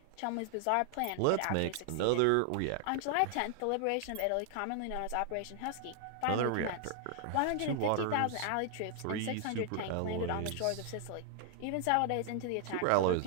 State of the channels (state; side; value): different; both; correlation 0.00